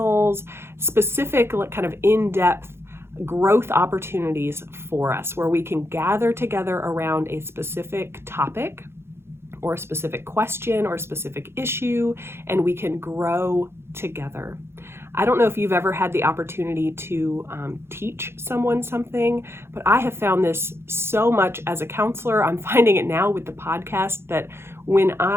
specific kind of in-depth growth opportunities for us where we can gather together around a specific topic or a specific question or a specific issue, and we can grow together. I don't know if you've ever had the opportunity to teach someone something, but I have found this so much as a counselor. I'm finding it now with the podcast that when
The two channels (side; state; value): left; late; 0.12 ms